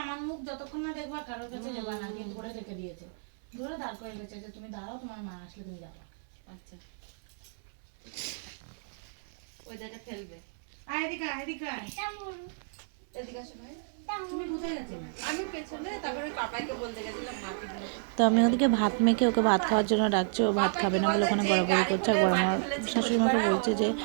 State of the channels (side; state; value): left; silent; 57 dB below the other